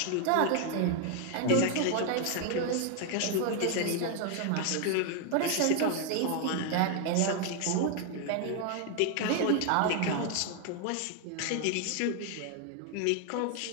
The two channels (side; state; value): both; different; correlation 0.01